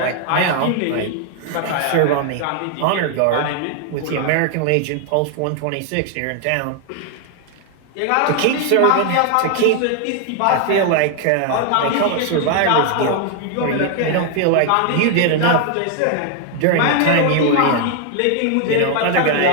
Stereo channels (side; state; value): both; different; correlation 0.00